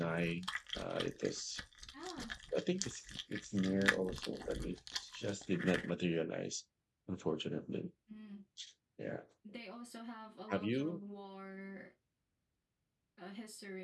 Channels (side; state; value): both; identical; correlation 1.00